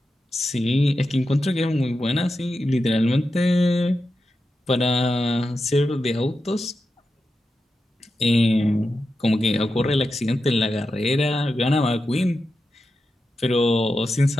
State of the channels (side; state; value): both; normal; correlation 0.90